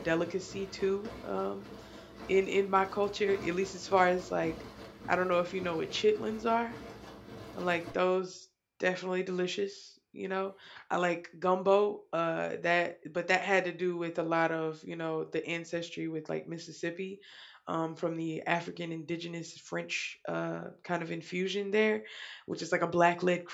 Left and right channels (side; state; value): both; identical; correlation 1.00